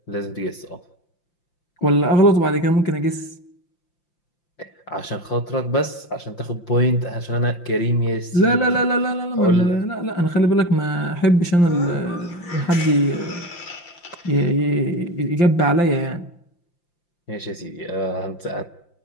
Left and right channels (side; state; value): right; late; 5.8 ms